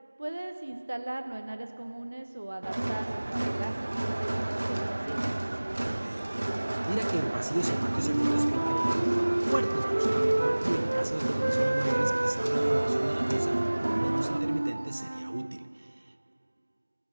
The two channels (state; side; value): inverted; both; correlation -1.00